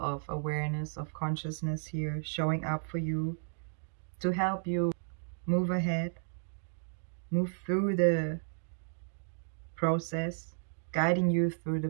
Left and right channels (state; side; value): silent; left; digital silence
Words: awareness, of consciousness here, showing up for you to help you move ahead. move through the process, guiding you through the